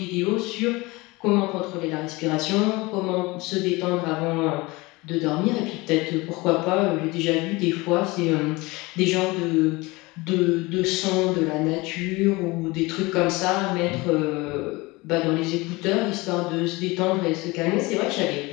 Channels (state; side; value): quieter; right; 23.1 dB